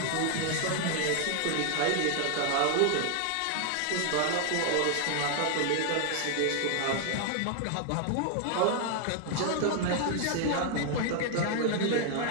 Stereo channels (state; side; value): different; both; correlation 0.00